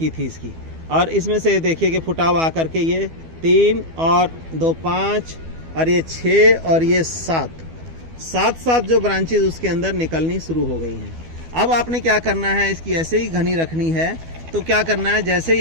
थी इसकी, और इसमें से देखिए कि फुटाव आकर के ये 3 और 2 5 और ये 6 और ये 7 जो ब्रांचेज उसके अंदर निकलनी शुरू हो गई हैं। अब आपने क्या करना है, इसकी ऐसे ही घनी रखनी है। तो क्या करना है, जैसे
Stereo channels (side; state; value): left; late; 12 ms